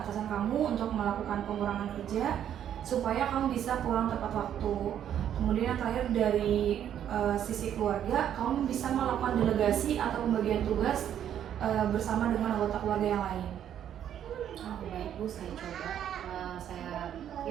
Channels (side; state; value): left; quieter; 10.0 dB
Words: kamu untuk melakukan pengurangan kerja supaya kamu bisa pulang tepat waktu. Kemudian yang terakhir dari sisi keluarga, kamu bisa melakukan delegasi atau pembagian tugas bersama dengan anggota keluarga yang lain. Baik Bu, saya coba. Saya